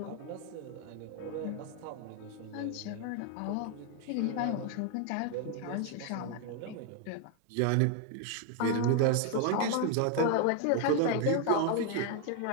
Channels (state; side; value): different; both; correlation 0.01